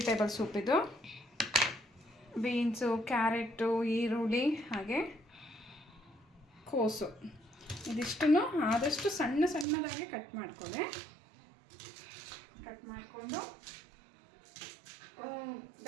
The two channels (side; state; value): left; drops out; at 9.7 s